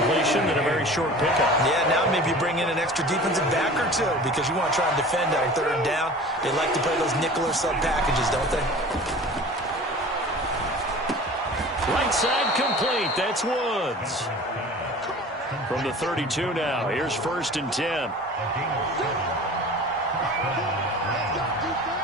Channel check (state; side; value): normal; both; correlation 0.40